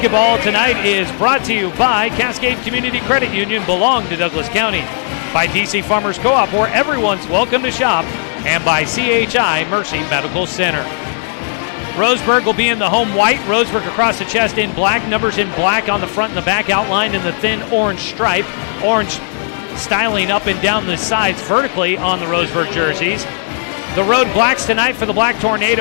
tonight is brought to you by Cascade Community Credit Union, belong to Douglas County, by DC Farmers Co-op, where everyone's welcome to shop, and by CHI Mercy Medical Center. Roseburg will be in the home white, Roseburg across the chest in black, numbers in black on the front and the back, outlined in the thin orange stripe, orange styling up and down the sides vertically on the Roseburg jerseys. The road blacks tonight for the Black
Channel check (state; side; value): silent; right; digital silence